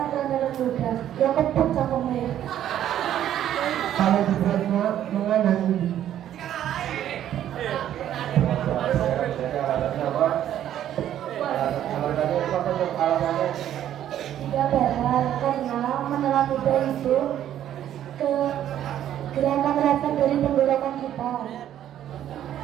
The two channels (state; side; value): quieter; left; 11.2 dB